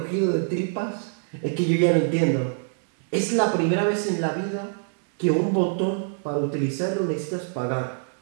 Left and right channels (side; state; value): left; silent; 60 dB below the other